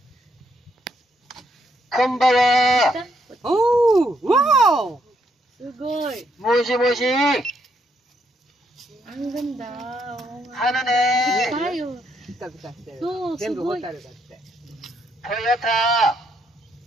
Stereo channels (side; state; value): both; normal; correlation 0.75